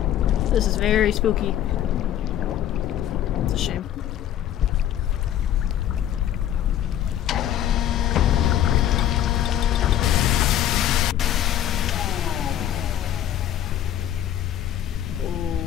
This is very spooky. It's a shame.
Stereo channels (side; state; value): right; quieter; 11.1 dB